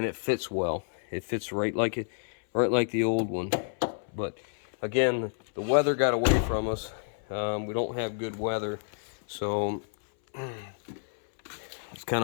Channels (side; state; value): right; silent; 58 dB below the other